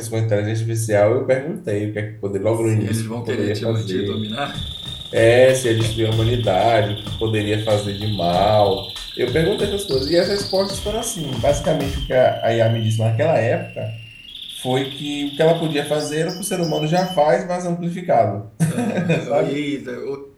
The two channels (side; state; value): both; identical; correlation 1.00